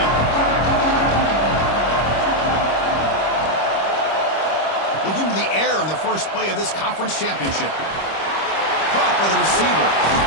First play of this conference championship. Caught by the receiver.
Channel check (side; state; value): right; late; 25 ms